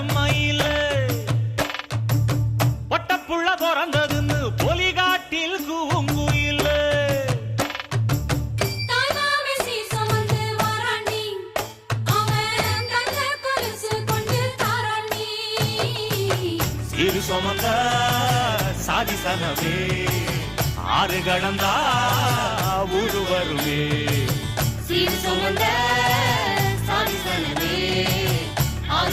மயில பொட்டப்புள்ள பிறந்ததுன்னு பொலிகாட்டில் கூங்குயில இரு சுமந்த சாதிசனவே ஆறு கடந்தா ஊரு வருமே சீர் சுமந்த சாதிசனவே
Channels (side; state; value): both; identical; correlation 1.00